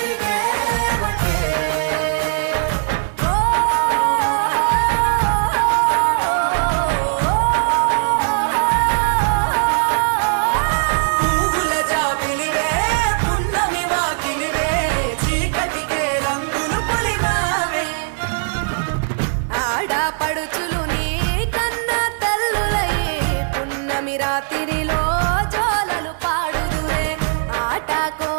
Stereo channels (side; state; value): left; silent; 66 dB below the other